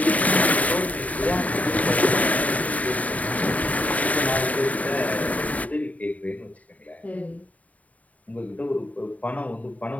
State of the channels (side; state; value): right; late; 0.071 ms